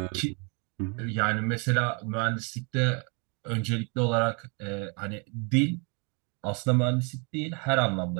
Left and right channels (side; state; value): left; quieter; 34.6 dB